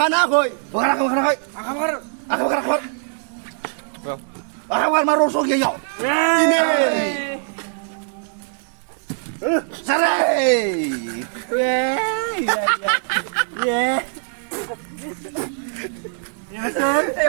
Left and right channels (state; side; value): silent; left; digital silence